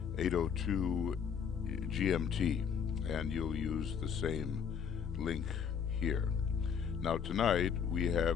8:02 GMT, and you'll use the same link here. Now tonight we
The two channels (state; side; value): quieter; right; 7.2 dB